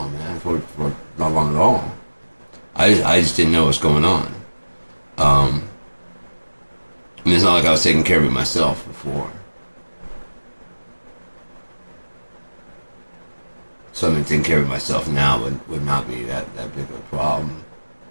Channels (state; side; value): inverted; both; correlation -1.00